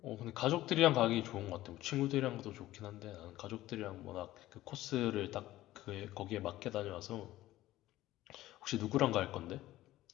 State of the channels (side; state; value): right; quieter; 15.6 dB